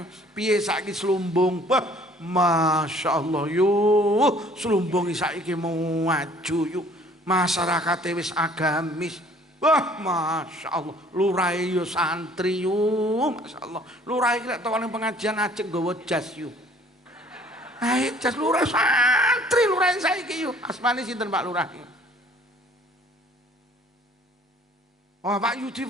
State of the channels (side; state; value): both; normal; correlation 0.55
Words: piye saiki slumbung? Wah, Masya Allah yuk slumbung saiki mau maju yuk, masyarakat wis agamis. Wah Masya Allah lurai yo santri yuk, Masya Allah lurai lek tokone pengajian ajeng nggawa jas yuk. Ayo jas lurai santri lurai saiki yuk. Asmane sinten Pak Lurah? Oh Pak Yudi